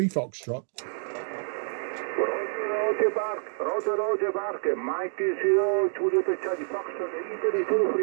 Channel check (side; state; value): left; silent; digital silence